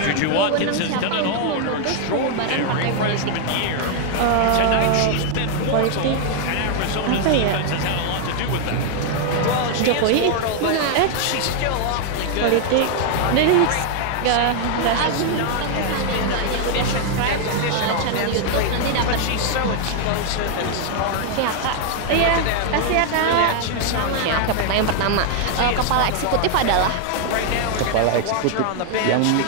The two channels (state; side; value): different; both; correlation 0.00